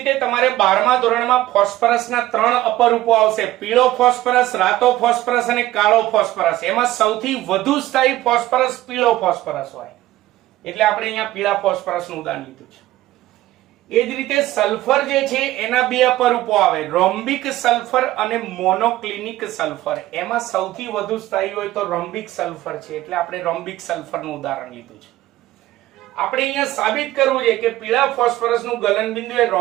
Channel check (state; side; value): quieter; left; 15.6 dB